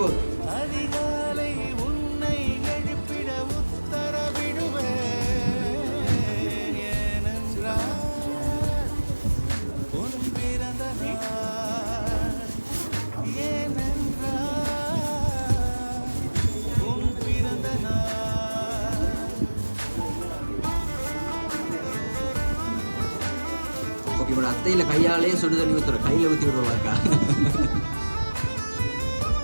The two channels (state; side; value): inverted; both; correlation -1.00